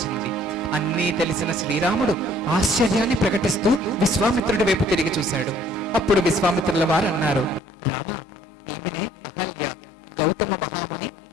అన్నీ తెలిసిన శ్రీరాముడు ఆశ్చర్యాన్ని ప్రకటిస్తూ విశ్వామిత్రుడి వైపు తిరిగి చూశాడు. అప్పుడు విశ్వామిత్రుల వారు అన్నారు, రామ, ఈమెనే అహల్య, గౌతమ మహాముని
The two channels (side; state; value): right; drops out; at 7.6 s